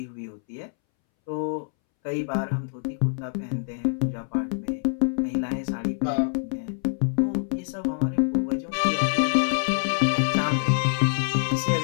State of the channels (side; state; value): right; silent; 61 dB below the other